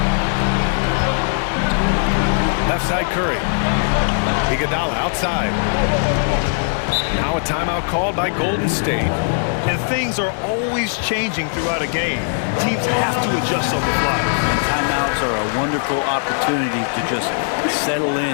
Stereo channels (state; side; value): silent; right; 56 dB below the other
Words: Left side Curry. Iguodala outside. Now a timeout called by Golden State. And things are always changing throughout a game. Teams have to adjust on the fly. And timeouts are a wonderful opportunity to just settle